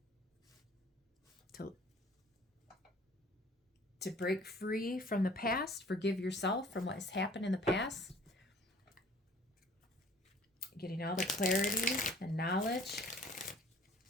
to break free from the past, forgive yourself from what has happened in the past. Getting all the clarity and knowledge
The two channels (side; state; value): both; normal; correlation 0.52